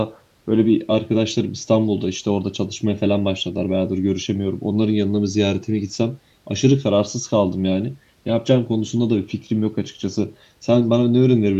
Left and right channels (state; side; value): identical; both; correlation 1.00